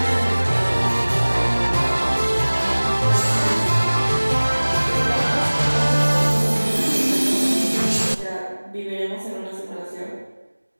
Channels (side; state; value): both; inverted; correlation -1.00